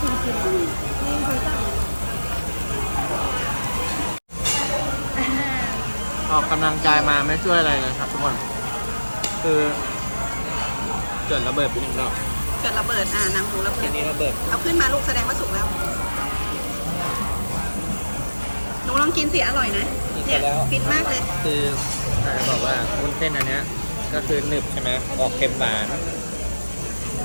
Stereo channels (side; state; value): both; inverted; correlation -1.00